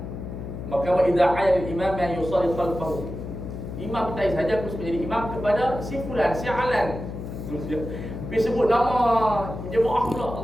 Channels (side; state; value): left; noise; hum, 8 dB below the sound